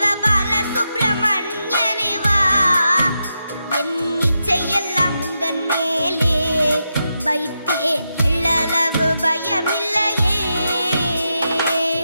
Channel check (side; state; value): both; inverted; correlation -0.86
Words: சுப்பிரமணியனே வா, என் இச்சையெல்லாம் முந்தன் மேலே வைத்தேன், எள்ளளவு பயமில்லையே.